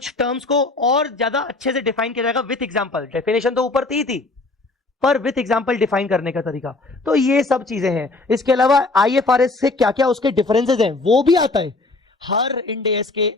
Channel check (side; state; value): right; quieter; 3.3 dB